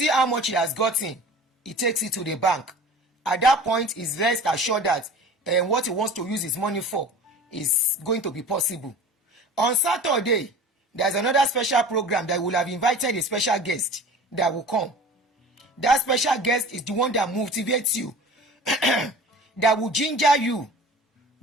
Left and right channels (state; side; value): normal; both; correlation 0.40